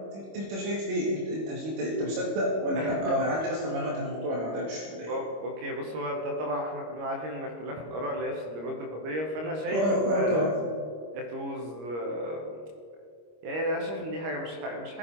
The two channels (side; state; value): left; late; 25 ms